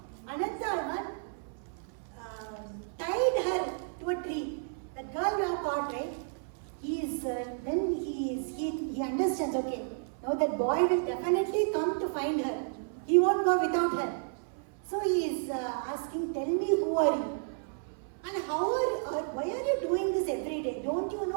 Anantalvan tied her to a tree. That girl now caught, right? Then he understands, okay, now that boy will definitely come to find her. He won't go without her. So he is asking, tell me who are you? And why are you doing this every day? Don't you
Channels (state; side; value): silent; left; 57 dB below the other